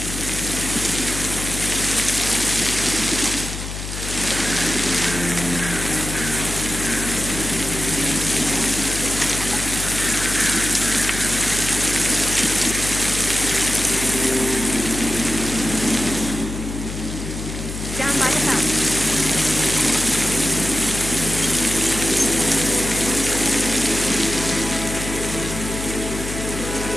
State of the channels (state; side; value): noise; left; hum, 7 dB below the sound